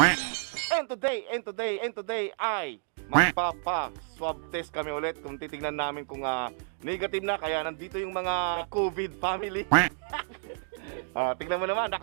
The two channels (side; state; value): left; silent; digital silence